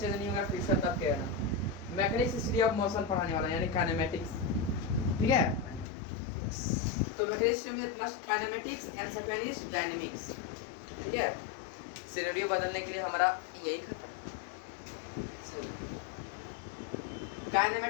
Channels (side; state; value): right; drops out; at 5.9 s